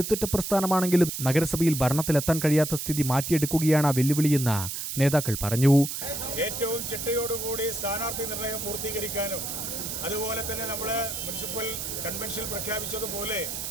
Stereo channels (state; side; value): noise; right; hiss, 5 dB below the sound